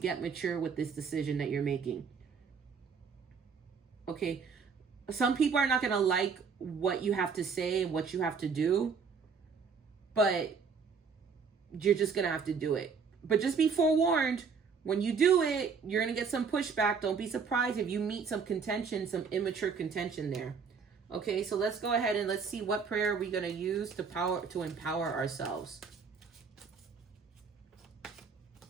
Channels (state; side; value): quieter; left; 5.6 dB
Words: mature with this decision that you're making. Okay, some people are not going to like what you have to say and what you have to do, but you're just going to have to do it. But just be forewarned, when you do it, you're going to get some pushback. Don't be surprised if you meet some contention, some immature contention there. Okay, so let's go ahead and let's see what prayer are we going to use to empower ourselves.